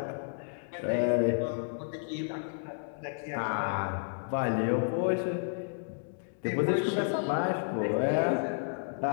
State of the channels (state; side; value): silent; right; digital silence